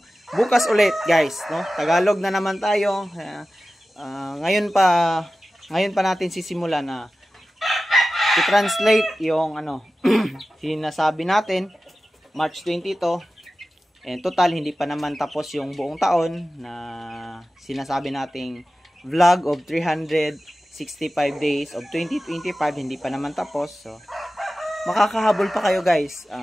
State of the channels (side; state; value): both; normal; correlation 0.95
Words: Bukas ulit guys, no? Tagalog na naman tayo. Ngayon pa natin sisimulan na i-translate yung sinasabi natin. March 20 to. And total hindi pa naman tapos yung buong taon na sinasabi nating vlog of 365 days of 2025, hindi pa naman tapos. So makakahabol pa kayo guys.